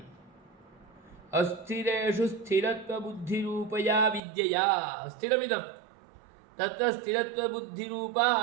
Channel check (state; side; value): drops out; left; at 4.2 s